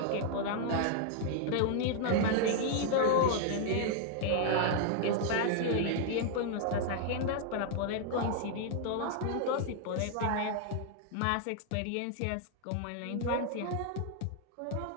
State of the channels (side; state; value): both; different; correlation 0.00